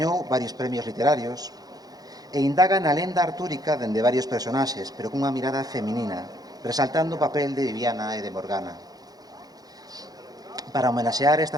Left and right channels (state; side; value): late; left; 0.19 ms